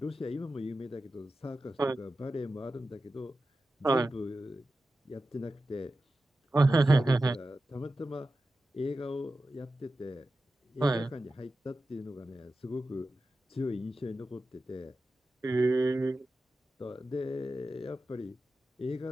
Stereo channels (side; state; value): both; normal; correlation 0.93